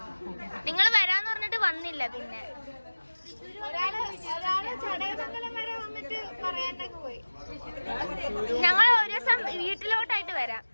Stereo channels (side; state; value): both; inverted; correlation -1.00